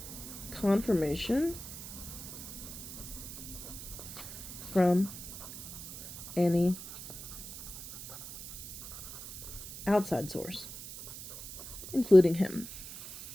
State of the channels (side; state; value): right; noise; hiss, 11 dB below the sound